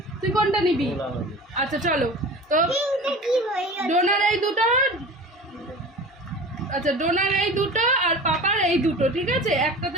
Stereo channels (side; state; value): both; normal; correlation 0.37